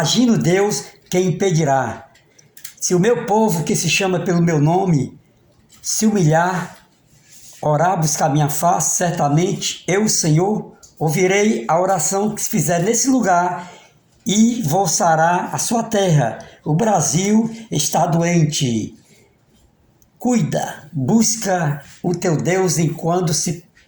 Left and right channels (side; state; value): both; identical; correlation 1.00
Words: Deus, quem impedirá? Se o meu povo, que se chama pelo meu nome, se humilhar, orar, buscar minha face, certamente eu, Senhor, ouvirei a oração que se fizer nesse lugar e vou sarar a sua terra. O Brasil está doente. Cuida, busca o teu Deus enquanto se